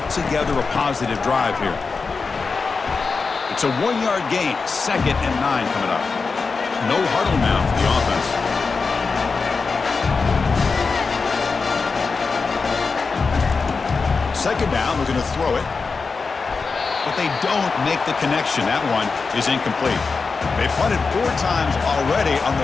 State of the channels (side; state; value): right; quieter; 4.6 dB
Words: together a positive drive here. It's a 1-yard gain, 2nd and 9 coming up. No huddle now for the offense. second down, looking to throw it. But they don't make the connection. That one is incomplete. They punted 4 times already, on